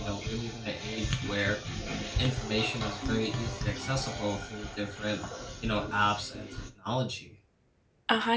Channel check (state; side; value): identical; both; correlation 1.00